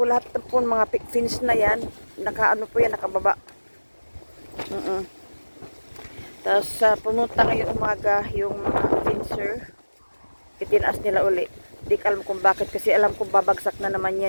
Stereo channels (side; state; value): both; inverted; correlation -1.00